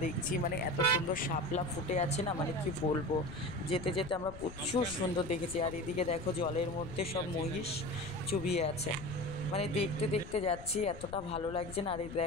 দেখছি, মানে এত সুন্দর শাপলা ফুটে আছে না, মানে কি বলবো। যেতে যেতে আমরা প্রচুর সুন্দর দেখেছি। আর এদিকে দেখো জলের মধ্যে সব মহিষ চুবিয়ে আছে, মানে দেখতে দেখতে যাচ্ছি, এতটা ভালো লাগছে না। আর এই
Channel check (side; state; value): left; noise; rumble, 13 dB below the sound